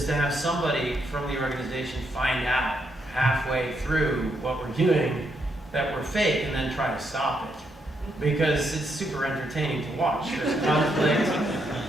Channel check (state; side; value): normal; both; correlation 0.78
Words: to have somebody from the organization find out halfway through what we're doing that we're fake, and then try to stop it. Because it's super entertaining to watch. There's conflict.